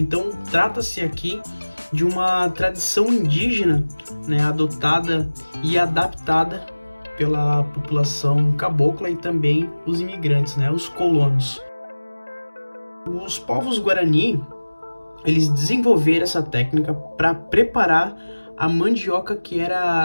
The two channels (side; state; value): both; inverted; correlation -1.00